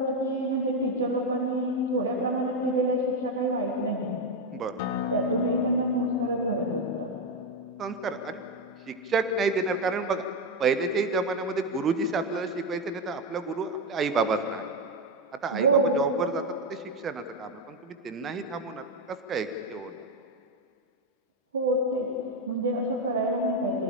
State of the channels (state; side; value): normal; both; correlation 0.08